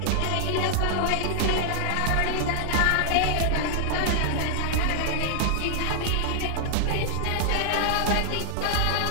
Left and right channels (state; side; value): different; both; correlation 0.00